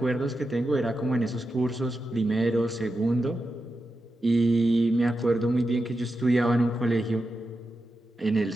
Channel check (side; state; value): both; normal; correlation 0.89